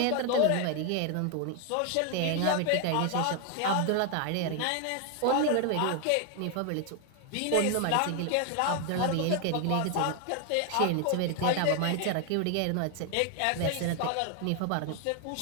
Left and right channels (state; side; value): different; both; correlation 0.01